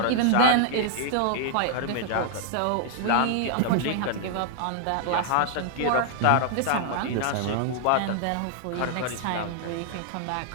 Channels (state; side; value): different; both; correlation -0.01